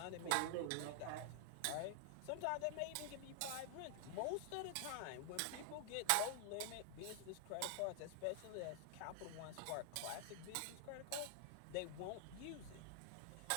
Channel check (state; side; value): different; both; correlation 0.00